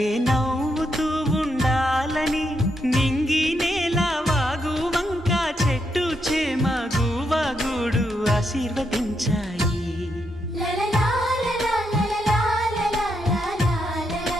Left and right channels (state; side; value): normal; both; correlation 0.80